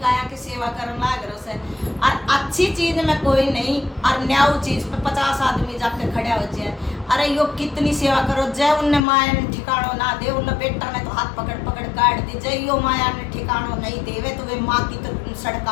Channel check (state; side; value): drops out; right; at 9.0 s